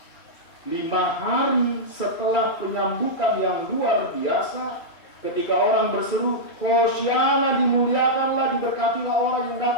5 hari setelah penyambutan yang luar biasa, Ketika orang berseru, Hosiana, dimuliakanlah, diberkatilah orang yang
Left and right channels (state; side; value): late; right; 2.7 ms